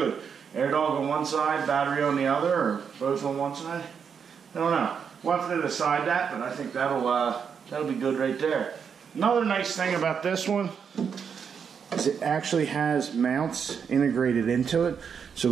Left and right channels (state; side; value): quieter; left; 6.8 dB